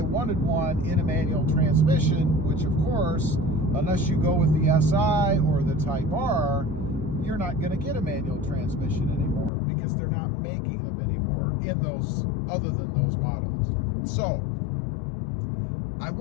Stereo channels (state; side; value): drops out; right; at 9.5 s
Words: wanted one in a manual transmission, which of course, unless you go with the SI or the Type R, you're not going to get a manual transmission anymore because they're not making them anymore in those, other than those models. So, I